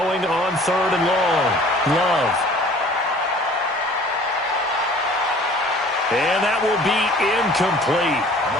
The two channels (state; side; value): normal; both; correlation 0.50